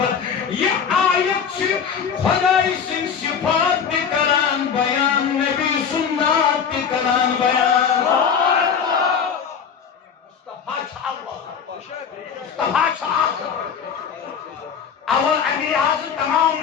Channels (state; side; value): quieter; right; 7.0 dB